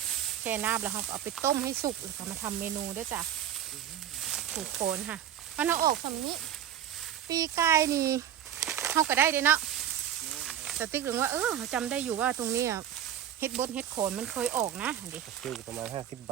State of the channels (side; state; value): left; quieter; 10.4 dB